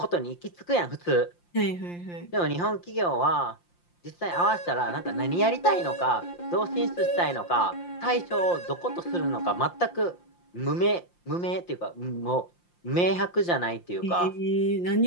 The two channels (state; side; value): late; right; 5.7 ms